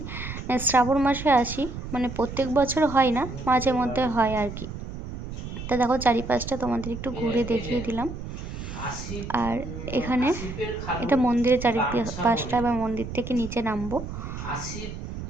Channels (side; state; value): right; noise; rumble, 9 dB below the sound